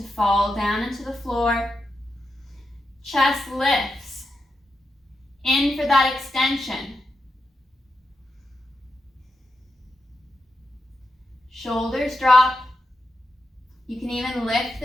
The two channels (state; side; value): normal; both; correlation 0.87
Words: fall down into the floor. Chest lifts. In for that extension. Shoulders drop. You can even lift